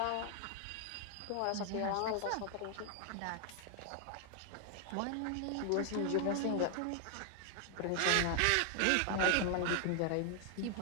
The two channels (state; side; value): different; both; correlation 0.00